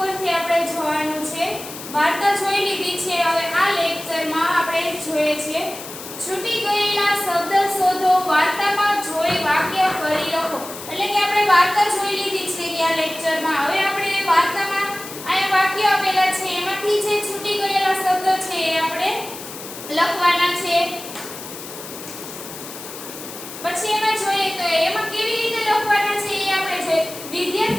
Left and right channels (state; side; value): noise; left; hiss, 12 dB below the sound